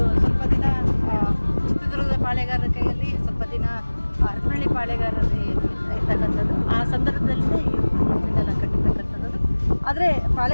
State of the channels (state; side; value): inverted; both; correlation -1.00